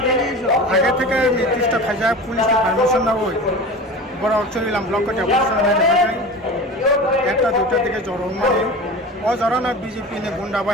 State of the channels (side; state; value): both; normal; correlation 0.33